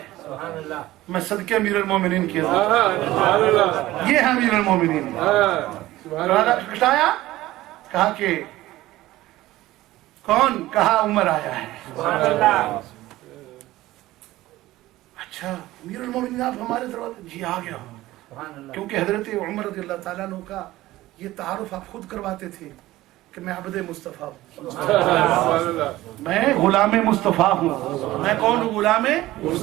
میں صدقے امیر المومنین کیا، یہ ہے امیر المومنین. دروازہ کھٹکھٹایا. کہا کہ کون؟ کہا عمر آیا ہے. اچھا امیر المومنین آپ ہمارے دروازے؟ جی آ گیا. کیونکہ حضرت عمر رضی اللہ تعالیٰ عنہ کا یہ تعارف آپ خود کرواتے تھے کہ میں عبد مصطفیٰ ہوں، میں غلام مصطفیٰ ہوں. میں کون ہوں؟ غلام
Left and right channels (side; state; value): left; quieter; 16.7 dB